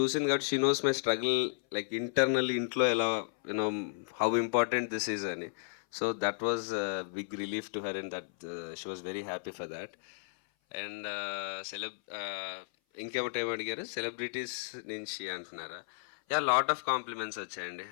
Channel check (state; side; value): silent; right; 55 dB below the other